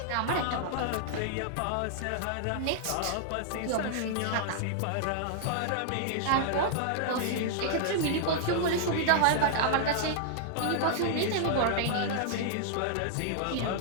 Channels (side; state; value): both; different; correlation -0.01